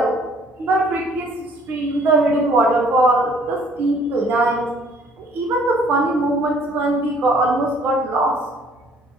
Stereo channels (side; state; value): both; normal; correlation 0.59